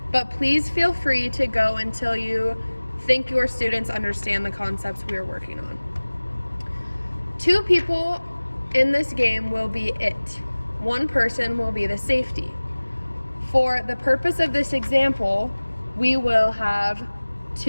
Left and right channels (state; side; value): inverted; both; correlation -1.00